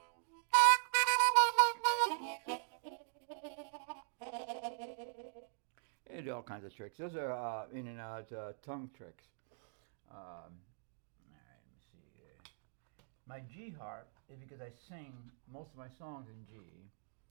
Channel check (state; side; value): silent; left; digital silence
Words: And all kinds of tricks. Those are in and out tongue tricks. All right, let me see here. My G harp is because I sing most of my songs in G.